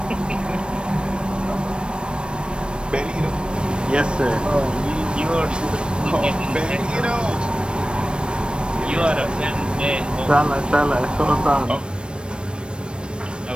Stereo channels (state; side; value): late; left; 0.055 ms